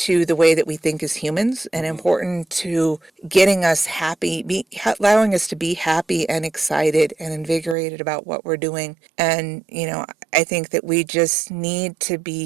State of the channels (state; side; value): drops out; left; at 7.8 s